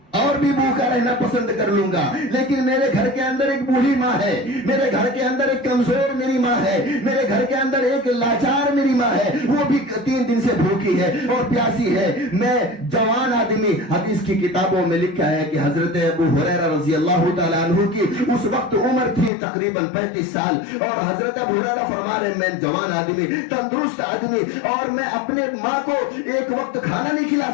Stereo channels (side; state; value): right; drops out; at 19.3 s